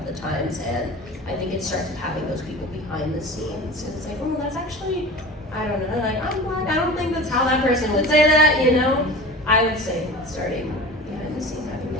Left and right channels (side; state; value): both; normal; correlation 0.35